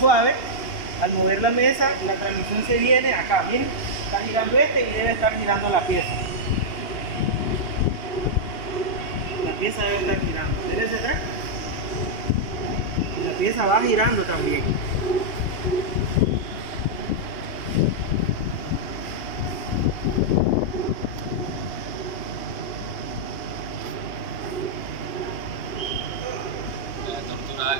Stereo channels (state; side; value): late; right; 2.8 ms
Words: Al mover la mesa, la transmisión se viene acá, miren, está girando este y debe estar girando la pieza. La pieza debe estar girando. Dele hacia atrás. Y la pieza va girando también. La tortura